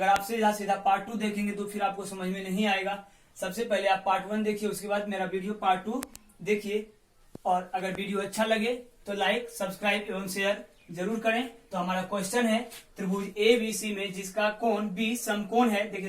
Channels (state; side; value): identical; both; correlation 1.00